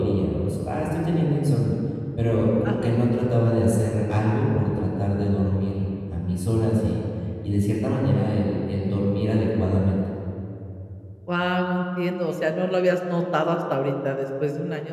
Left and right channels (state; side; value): identical; both; correlation 1.00